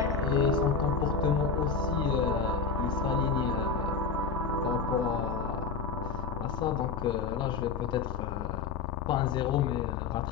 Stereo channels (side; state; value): right; quieter; 5.2 dB